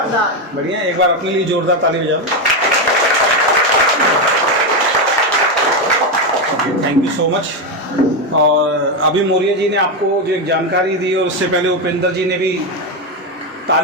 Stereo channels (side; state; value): both; normal; correlation 0.09